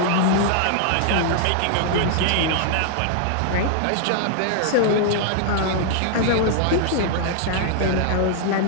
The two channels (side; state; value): both; different; correlation 0.00